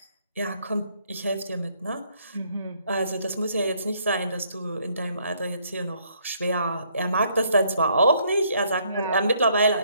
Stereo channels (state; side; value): inverted; both; correlation -0.68